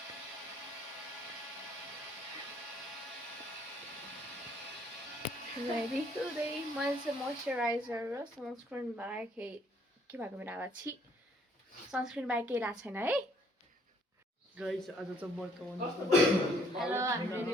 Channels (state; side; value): normal; both; correlation 0.63